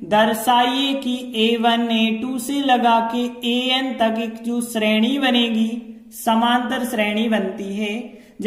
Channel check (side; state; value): both; identical; correlation 1.00